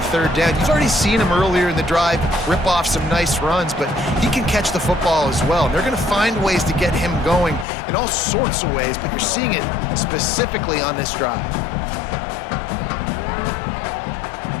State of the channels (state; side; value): drops out; right; at 7.7 s